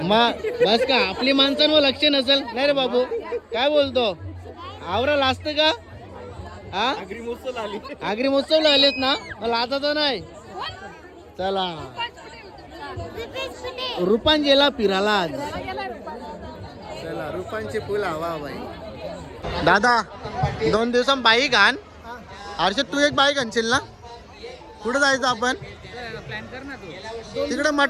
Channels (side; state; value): both; identical; correlation 1.00